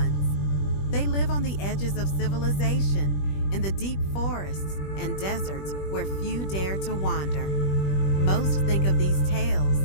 They live on the edges of civilization, in the deep forests and deserts where few dare to wander. Most think of these tales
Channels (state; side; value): late; right; 21 ms